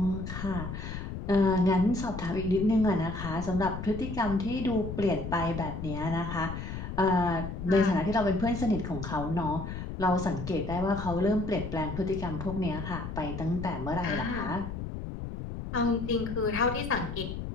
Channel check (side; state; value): left; noise; rumble, 7 dB below the sound